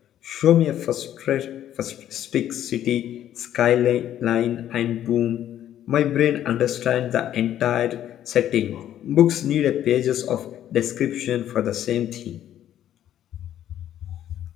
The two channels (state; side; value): quieter; right; 11.4 dB